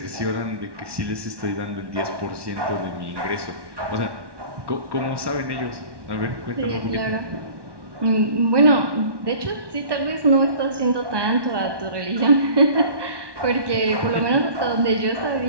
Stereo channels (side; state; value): left; late; 1.1 ms